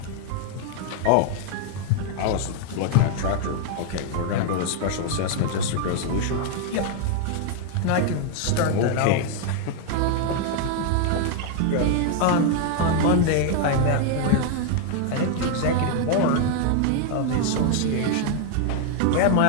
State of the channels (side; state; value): both; different; correlation 0.00